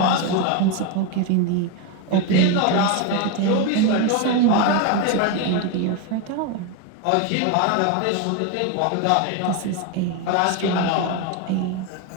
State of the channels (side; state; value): both; different; correlation 0.02